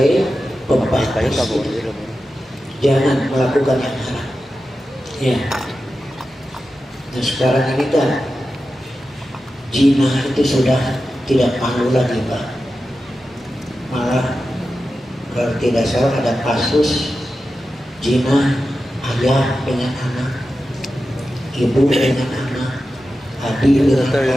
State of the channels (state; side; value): normal; both; correlation 0.92